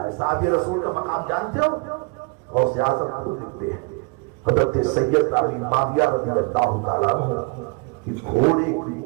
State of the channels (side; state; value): left; quieter; 30.9 dB